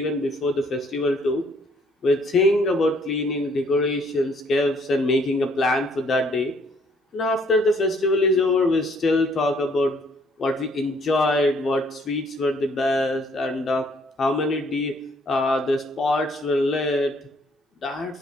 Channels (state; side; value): normal; both; correlation 0.64